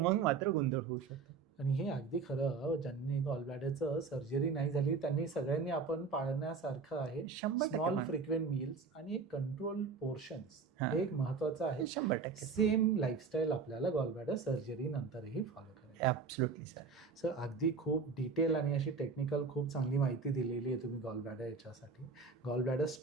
मात्र गोंधळ होऊ शकतो. आणि हे अगदी खरं, ज्यांनी गॉल ब्लॅडरचं सर्जरी नाही झाली त्यांनी सगळ्यांनी आपण पाळण्यासारखं आहे. स्मॉल फ्रिक्वेंट मील्स आणि एक कंट्रोल पोर्शन्स हे एक महत्वाचं आहे. 100% सेम लाईफस्टाईल आपल्याला गॉल ब्लॅडर सर्जरी नंतरही फॉलो करायची. Absolutely sir. सर अगदी खूप डिटेल आणि अशी टेक्निकल खूप चांगली माहिती दिलेली आहे तुम्ही गॉल ब्लॅडर याच्यासाठी, गॉल ब्लॅडर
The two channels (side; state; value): left; quieter; 4.9 dB